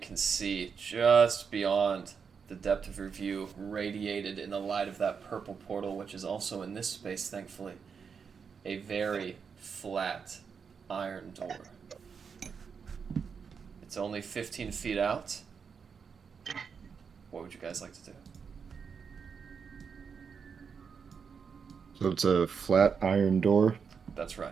see just beyond the depth of your view, radiated in the light of that purple portal, which is also in this space, thankfully, a very flat iron door. It's only 15 feet out. What would you guys like to do? So it's a flat iron door. That's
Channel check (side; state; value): left; quieter; 6.2 dB